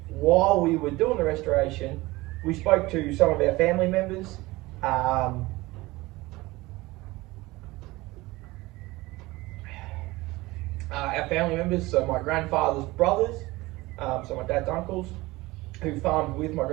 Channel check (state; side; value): quieter; left; 20.5 dB